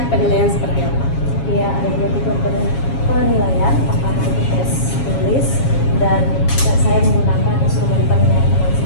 penilaian seperti apa? Ya, ada dua tipe penilaian. Pertama itu tes tulis, dan saya menggunakan instrumen penilaian teman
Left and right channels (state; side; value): late; right; 7.3 ms